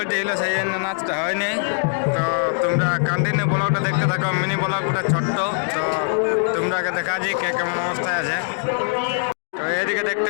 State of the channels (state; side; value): silent; right; 59 dB below the other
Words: ছিল, সেই জন্য নাচটা হয়নি। তো তোমরা কন্টিনিউ ব্লগটা দেখতে থাকো, মিনি ব্লগটা ছোট্ট। তো তোমরাকে দেখাচ্ছি কে কেমন অবস্থায় আছে। তো এদিকে দেখতে